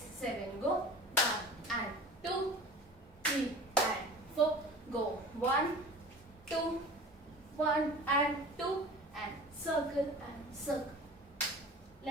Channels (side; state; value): both; normal; correlation 0.39